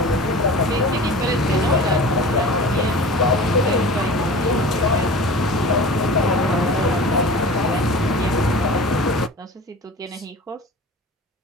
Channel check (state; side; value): normal; both; correlation 0.38